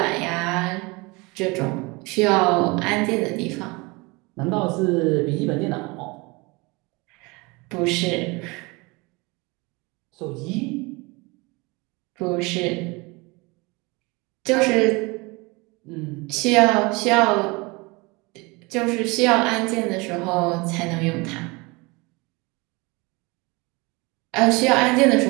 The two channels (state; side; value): quieter; left; 26.0 dB